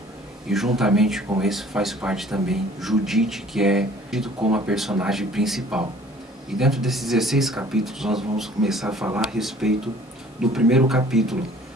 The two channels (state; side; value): normal; both; correlation 0.52